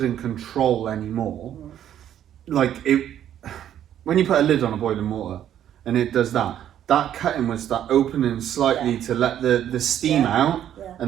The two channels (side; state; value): left; quieter; 10.6 dB